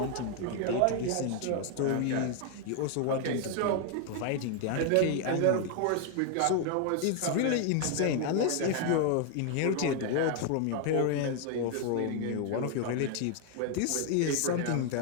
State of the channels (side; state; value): both; different; correlation 0.00